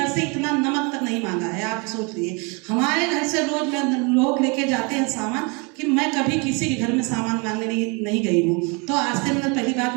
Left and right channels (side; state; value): left; quieter; 31.3 dB